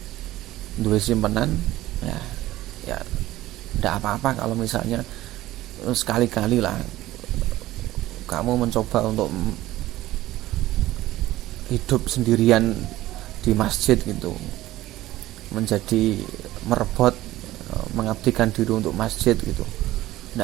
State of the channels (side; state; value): left; quieter; 15.9 dB